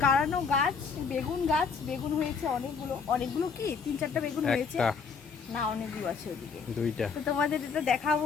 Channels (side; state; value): right; quieter; 5.6 dB